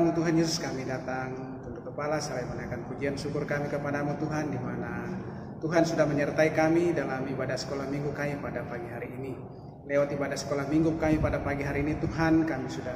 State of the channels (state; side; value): identical; both; correlation 1.00